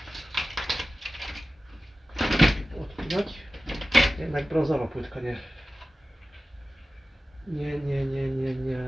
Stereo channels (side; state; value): both; normal; correlation 0.95